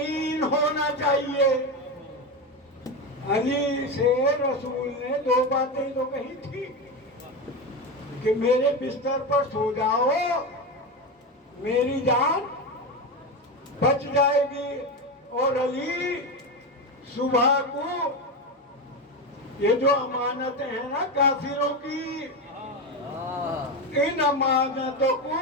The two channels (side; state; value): both; normal; correlation 0.17